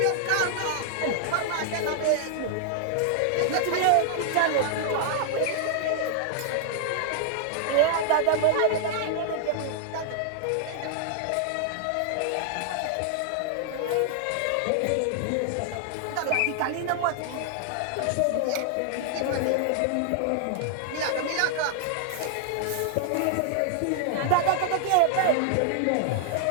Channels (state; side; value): different; both; correlation 0.00